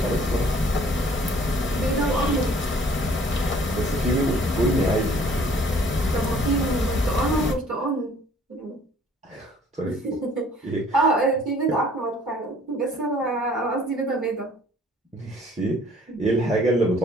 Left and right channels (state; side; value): normal; both; correlation 0.56